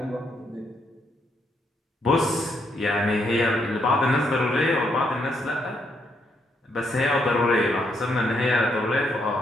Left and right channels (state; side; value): normal; both; correlation 0.75